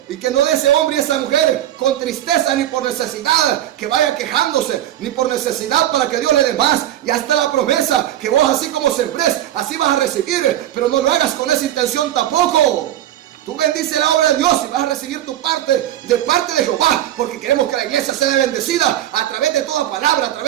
y que no de ese hombre y esa mujer con tristeza ni por necesidad, que vaya quejándose, ni por necesidad para que Dios le dé más. Ya está la promesa, que vos así como sembrés, así vas a recibir, pero no lo hagas con esa intención tampoco. Tú bendice la obra de Dios y vas a recibir tu parte de parte de Jehová, porque queremos que la iglesia sea bendecida a través de toda palabra, a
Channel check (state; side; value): quieter; left; 12.5 dB